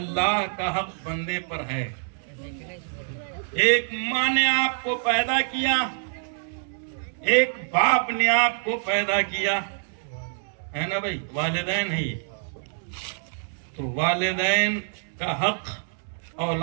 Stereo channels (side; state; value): left; silent; digital silence